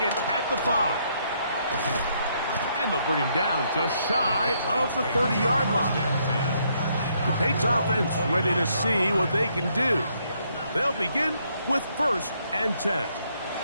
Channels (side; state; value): both; inverted; correlation -0.72